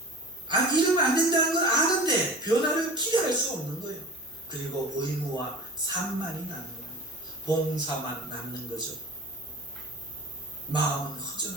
이러면 안 된다는 건 아는데 변화를 기대할 수 없는 거예요. 그리고 의무와 산만이 남는 거예요. 봉사만 남는 거죠. 마음은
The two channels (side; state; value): both; normal; correlation 0.36